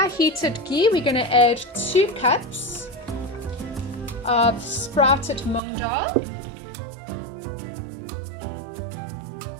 heated ghee, we're going to add 2 cups of sprouted mung dhal.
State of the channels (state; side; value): drops out; left; at 5.6 s